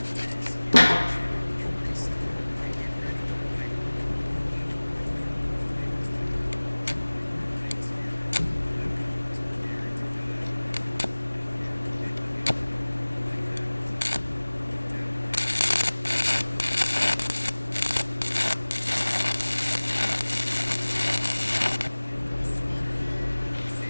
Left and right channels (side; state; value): both; inverted; correlation -1.00